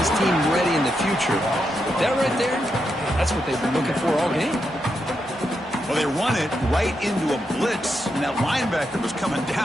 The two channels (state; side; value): normal; both; correlation 0.84